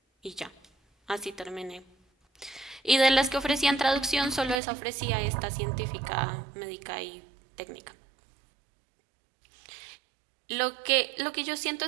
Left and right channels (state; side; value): drops out; left; at 4.6 s